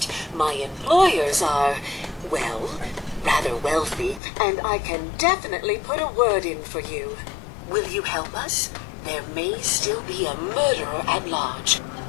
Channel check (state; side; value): drops out; right; at 4.2 s